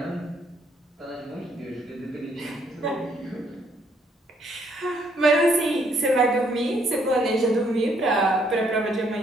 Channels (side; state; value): both; normal; correlation 0.69